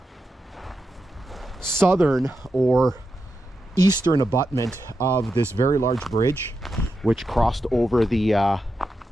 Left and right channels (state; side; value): normal; both; correlation 0.88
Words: southern or eastern abutment of this very large bridge, which crossed over the